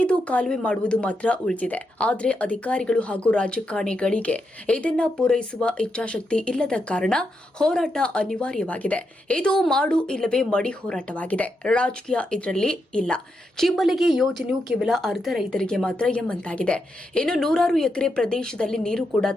ಕಾಲುವೆ ಮಾಡುವುದು ಮಾತ್ರ ಉಳಿದಿದೆ. ಆದರೆ ಅಧಿಕಾರಿಗಳು ಹಾಗೂ ರಾಜಕಾರಣಿಗಳಿಗೆ ಇದನ್ನ ಪೂರೈಸುವ ಇಚ್ಛಾಶಕ್ತಿ ಇಲ್ಲದ ಕಾರಣ ಹೋರಾಟ ಅನಿವಾರ್ಯವಾಗಿದೆ. ಇದು ಮಾಡು ಇಲ್ಲವೇ ಮಡಿ ಹೋರಾಟವಾಗಿದೆ. ರಾಜಕೀಯ ಇದರಲ್ಲಿ ಇಲ್ಲ. ಚಿಮ್ಮಲಗಿ ಯೋಜನೆಯು ಕೇವಲ ಅರ್ಧ ರೈತರಿಗೆ ಮಾತ್ರ ಎಂಬಂತಾಗಿದೆ. ಇನ್ನು ನೂರಾರು ಎಕರೆ ಪ್ರದೇಶದಲ್ಲಿ ನೀರು ಕೂಡ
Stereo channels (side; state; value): both; normal; correlation 0.84